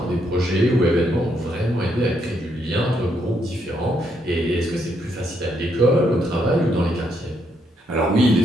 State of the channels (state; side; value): normal; both; correlation 0.75